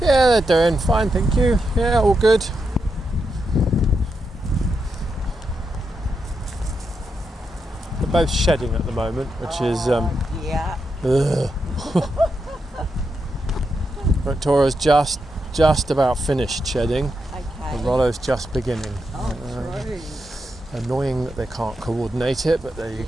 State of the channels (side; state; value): both; normal; correlation 0.84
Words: Yeah, they're doing fine, thank you. Yeah, all good. They're both shedding at the moment, which is Yeah. ugh. But Tora's just about finished shedding, Okay. and Rollo's just beginning. Oh, true. Annoying that they can't coordinate it, but there you